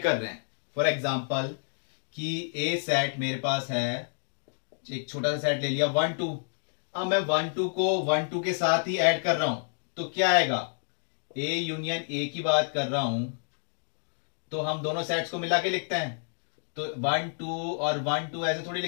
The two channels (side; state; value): right; silent; digital silence